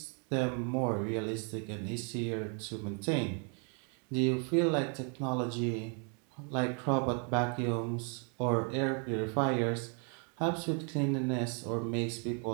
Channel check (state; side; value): quieter; left; 38.6 dB